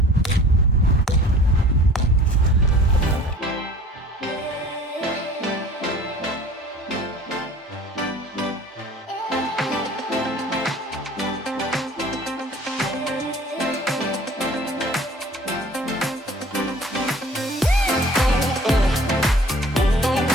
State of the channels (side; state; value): both; normal; correlation 0.48